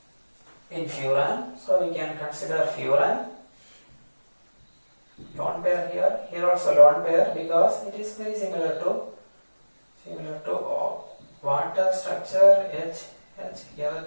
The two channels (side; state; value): both; inverted; correlation -1.00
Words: in furan. So we can consider furan. Lone pair here also lone pair, because it is very similar to water structure. H here the